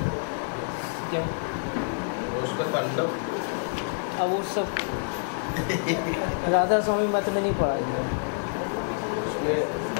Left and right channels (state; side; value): silent; right; digital silence